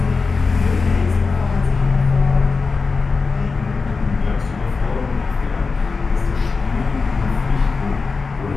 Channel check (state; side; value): quieter; right; 4.4 dB